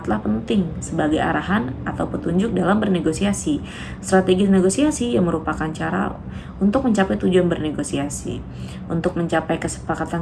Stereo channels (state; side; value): identical; both; correlation 1.00